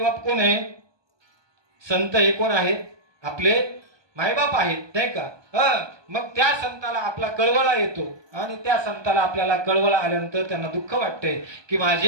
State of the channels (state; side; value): late; left; 1.2 ms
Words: बाप कोण आहे संत हे कोण आहेत आपले मायबाप आहेत नाही का. मग त्या संताला आपला कळवळा येतो आणि त्या संताला आपल्याला कळवळा आल्यानंतर त्यांना दुःख वाटते की